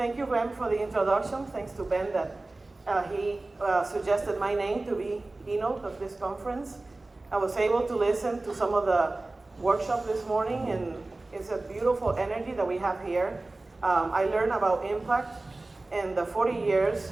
you, Ben, for the introduction. Thanks to Ben that he suggested my name to be keynote of this conference. I was able to listen to some of the workshop this morning, and it's a beautiful energy that we have here. I learned about impact and the 40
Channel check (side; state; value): left; quieter; 3.0 dB